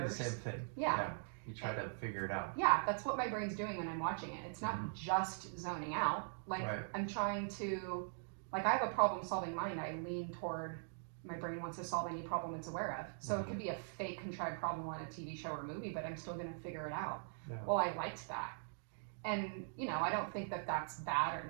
do the same thing. Yeah. You try to figure it out. Yeah, that's what my brain's doing when I'm watching it. It's not just zoning out. Like, I'm trying to, I have a problem-solving mind. I lean toward my brain wants to solve any problem it's aware of. So it could be a fake, contrived problem on a TV show or movie, but I'm still going to figure it out. Yeah. Well, I liked that. And, I don't think that that's bad or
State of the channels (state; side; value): silent; left; digital silence